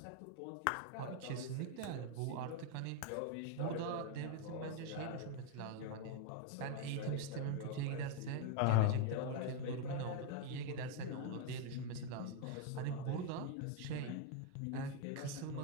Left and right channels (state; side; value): different; both; correlation 0.01